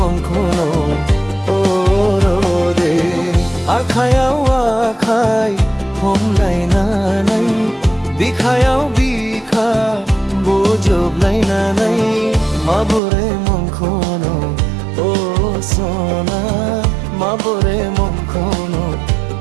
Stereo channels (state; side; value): drops out; left; at 13.0 s